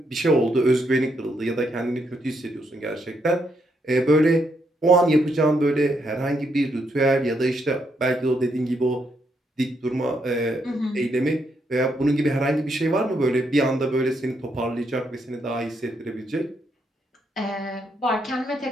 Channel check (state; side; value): normal; both; correlation 0.77